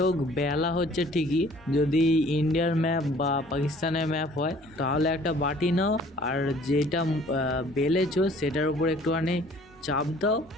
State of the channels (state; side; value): normal; both; correlation 0.54